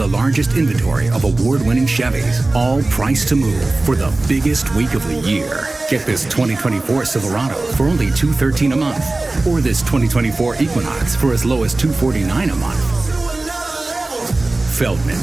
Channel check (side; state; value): left; quieter; 3.1 dB